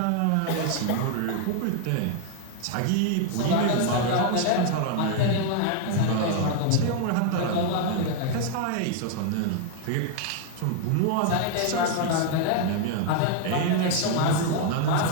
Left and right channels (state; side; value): different; both; correlation 0.00